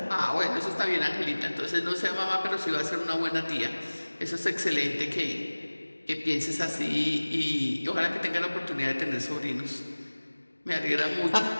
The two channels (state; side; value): inverted; both; correlation -1.00